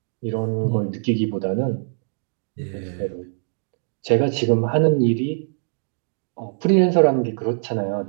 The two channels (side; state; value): left; silent; digital silence